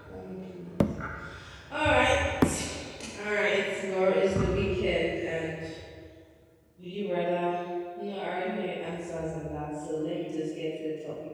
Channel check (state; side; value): identical; both; correlation 1.00